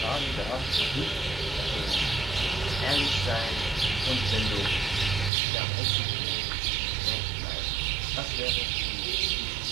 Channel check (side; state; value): left; drops out; at 5.3 s